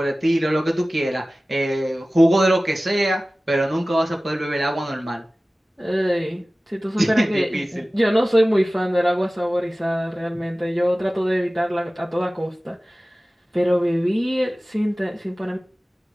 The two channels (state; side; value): normal; both; correlation 0.97